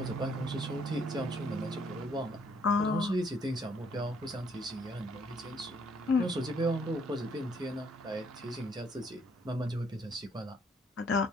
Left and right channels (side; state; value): both; normal; correlation 0.66